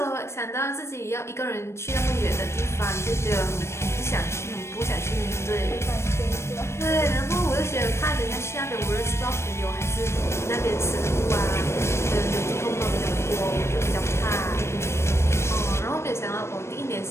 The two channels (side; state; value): right; late; 0.13 ms